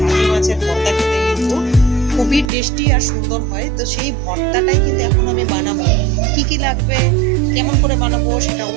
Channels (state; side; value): drops out; left; at 2.5 s